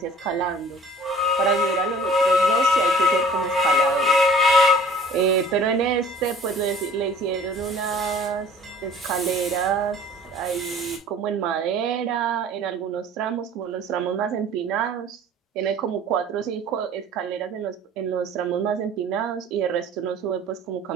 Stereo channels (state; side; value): normal; both; correlation 0.49